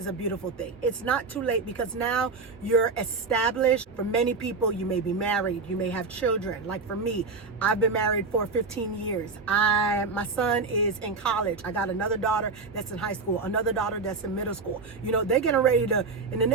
a beautiful thing. It's not too late because now you're established. For many people, you may be married, you may have children. Like for me, I've been married for 15 years. My son is in college. I got another daughter that's in high school, another daughter that's in middle school. You know, they're getting ready to, in the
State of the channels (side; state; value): left; quieter; 4.2 dB